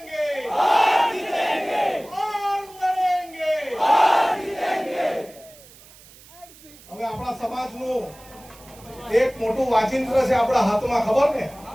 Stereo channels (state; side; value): noise; right; hiss, 23 dB below the sound